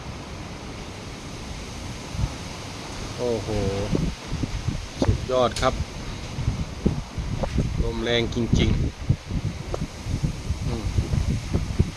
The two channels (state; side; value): identical; both; correlation 1.00